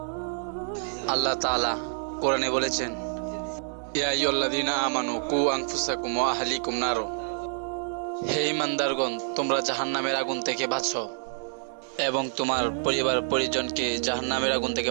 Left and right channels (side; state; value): left; silent; digital silence